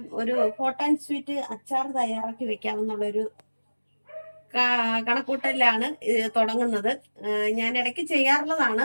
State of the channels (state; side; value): inverted; both; correlation -1.00